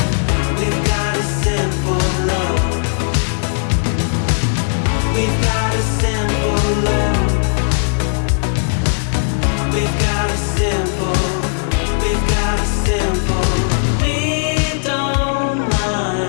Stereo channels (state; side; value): silent; right; digital silence